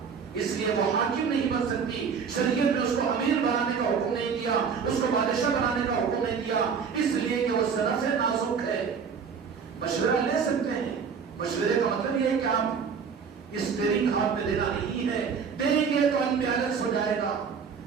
اس لیے وہ حاکم نہیں بن سکتی۔ شریعت نے اس کو امیر بنانے کا حکم نہیں دیا، اس کو بادشاہ بنانے کا حکم نہیں دیا، اس لیے کہ وہ صرف نازک ہے۔ مشورہ لے سکتے ہیں، مشورے کا مطلب یہ ہے کہ آپ اسٹیئرنگ ہاتھ میں دینا نہیں ہے، دیں گے تو انبیلنس ہو جائے گا۔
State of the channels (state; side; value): quieter; left; 6.2 dB